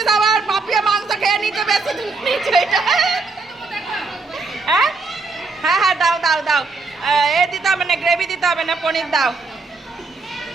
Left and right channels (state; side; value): quieter; left; 3.9 dB